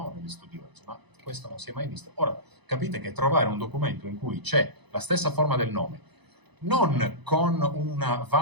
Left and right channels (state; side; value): late; left; 0.99 ms